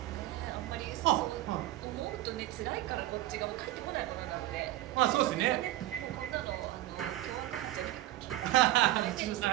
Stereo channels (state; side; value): quieter; left; 15.7 dB